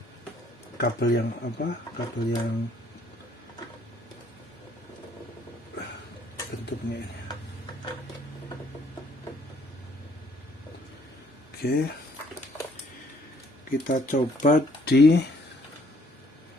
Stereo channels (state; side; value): normal; both; correlation 0.63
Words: Kabel yang bentuknya ini. Oke, kita coba di